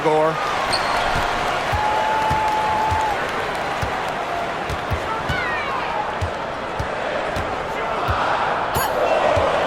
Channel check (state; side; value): identical; both; correlation 1.00